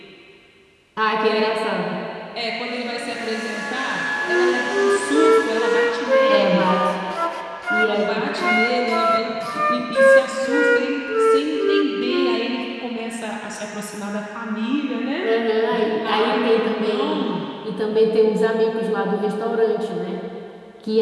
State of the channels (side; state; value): both; identical; correlation 1.00